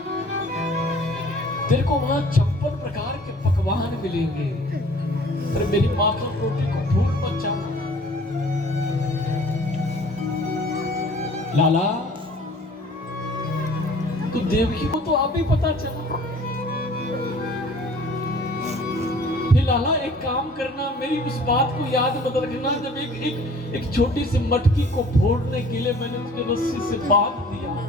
तेरे को वहां 56 प्रकार के पकवान मिलेंगे, पर मेरी माखन रोटी को भूल मत जाना। लाला, तो देवकी को तो आप ही पता चला। हे लाला, एक काम करना, मेरी उस बात को याद मत रखना जब एक छोटी सी मटकी को फोड़ने के लिए मैंने उसके रस्सी से बांध दिया।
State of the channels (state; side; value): normal; both; correlation 0.50